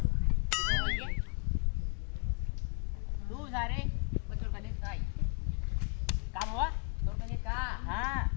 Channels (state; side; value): quieter; right; 38.8 dB